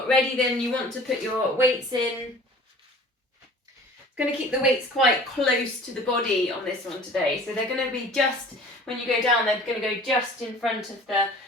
ready, then you want to put your weights in. Going to keep the weights quite close to the body on this one today. So they're going to be just, when you go down, they're going to go just in front of the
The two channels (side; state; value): both; normal; correlation 0.46